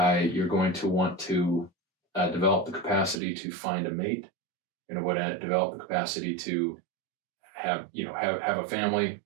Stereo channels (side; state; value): left; drops out; at 3.2 s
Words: going to want to develop the capacity to find a mate. Develop the capacity to have a family